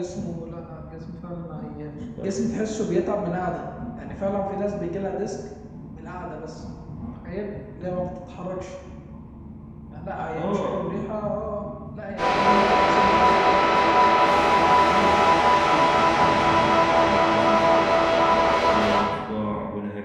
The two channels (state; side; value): identical; both; correlation 1.00